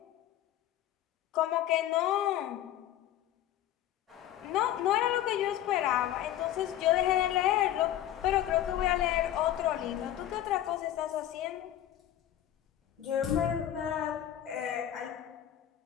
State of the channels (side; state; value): right; quieter; 12.2 dB